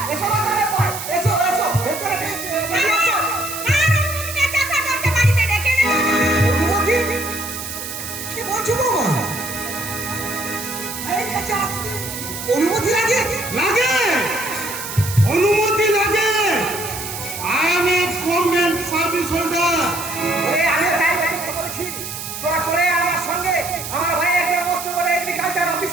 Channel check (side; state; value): right; noise; hiss, 8 dB below the sound